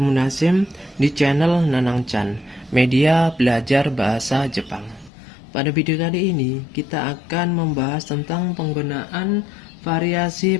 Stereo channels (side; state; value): right; drops out; at 5.1 s